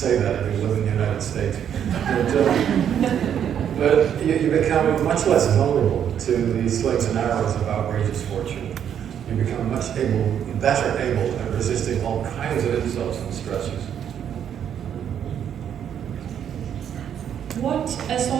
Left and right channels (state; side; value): quieter; left; 9.1 dB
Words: that if you live in the United States. But you become much less vulnerable to the slings and arrows of outrageous fortune. You become better able at resisting all kinds of insults and stresses. So